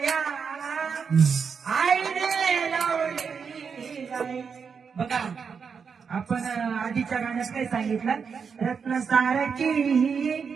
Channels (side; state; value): left; quieter; 6.1 dB